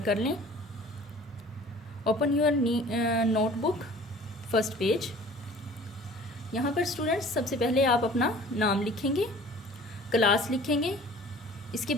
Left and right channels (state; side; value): normal; both; correlation 0.47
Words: कर लें। Open your notebook, first page. यहाँ पर स्टूडेंट्स सबसे पहले आप अपना नाम लिखेंगे, क्लास लिखेंगे, इसके